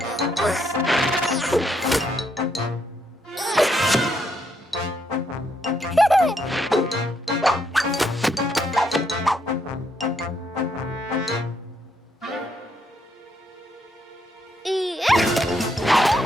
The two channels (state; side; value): normal; both; correlation 0.75